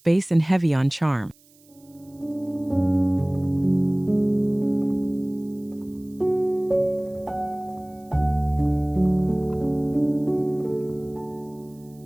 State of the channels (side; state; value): right; noise; hiss, 30 dB below the sound